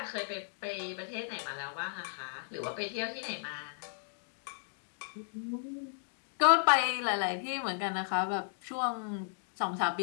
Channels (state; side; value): silent; right; digital silence